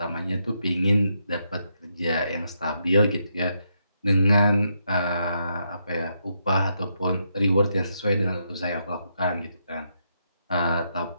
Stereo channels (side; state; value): both; inverted; correlation -0.80